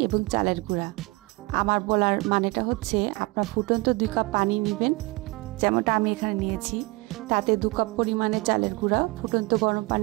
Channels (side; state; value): left; quieter; 24.5 dB